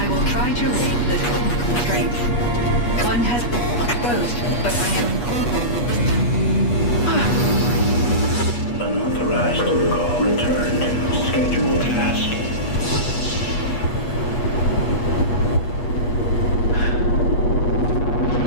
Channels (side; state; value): right; late; 8.3 ms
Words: will try to raid the technical strength. One has been exposed, but I am... Unauthorized call returned. Scheduled task.